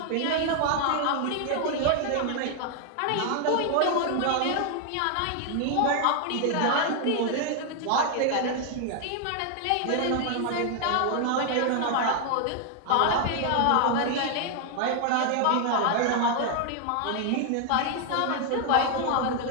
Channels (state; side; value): different; both; correlation 0.00